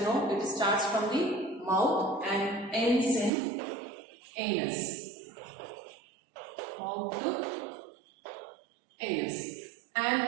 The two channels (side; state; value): left; drops out; at 3.3 s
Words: it starts from the mouth and ends in anus. Mouth to anus.